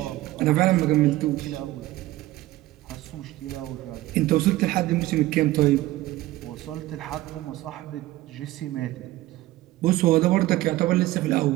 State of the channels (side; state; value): left; quieter; 17.0 dB